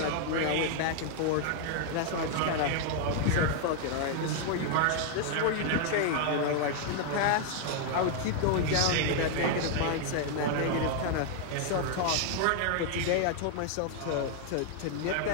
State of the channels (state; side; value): different; both; correlation 0.00